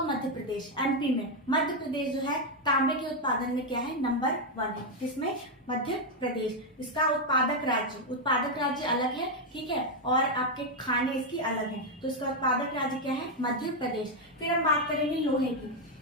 मध्य प्रदेश, एमपी में। मध्य प्रदेश जो है तांबे के उत्पादन में क्या है? नंबर 1 है। किसमें? मध्य प्रदेश। इसका उत्पादक राज्य अलग है, ठीक है, और आपके खाने इसकी अलग है, तो इसका उत्पादक राज्य क्या है? मध्य प्रदेश। फिर हम बात करेंगे लोहे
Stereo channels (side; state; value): both; normal; correlation 0.02